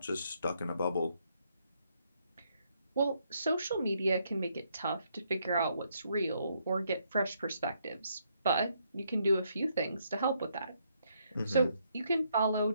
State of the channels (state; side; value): inverted; both; correlation -0.74